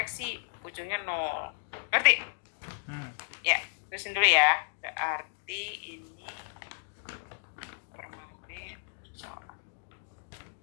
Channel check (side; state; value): right; silent; digital silence